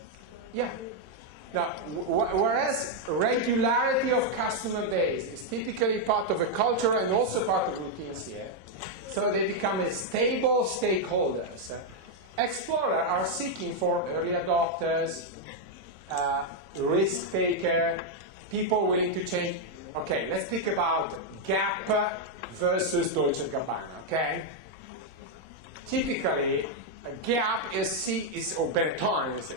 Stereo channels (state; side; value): late; left; 26 ms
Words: Yeah. Now, whereas regularity of customer base is typically part of a culture and also part of routines here, so they become a stable stakeholders. Explorers are seeking for early adopters, risk taker, people willing to change. Okay, let's speak about Gap versus Dolce & Gabbana, okay? Typically, Gap or Benetton,